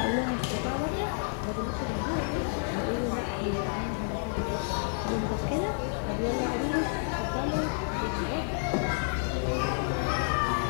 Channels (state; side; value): silent; right; digital silence